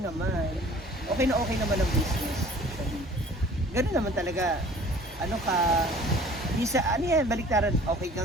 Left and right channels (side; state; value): both; normal; correlation 0.49